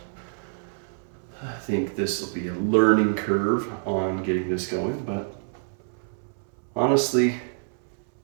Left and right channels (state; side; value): silent; left; 60 dB below the other